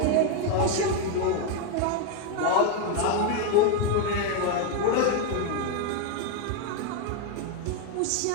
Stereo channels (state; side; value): different; both; correlation 0.01